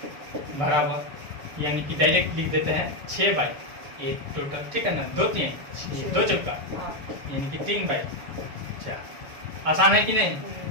बराबर, यानी कि डायरेक्ट लिख देते हैं 6 बाई 8 टोटल। ठीक है ना? 2 3 6 2 चौका, यानी कि 3 बाई 4। आसान है कि नहीं?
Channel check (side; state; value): left; late; 6.9 ms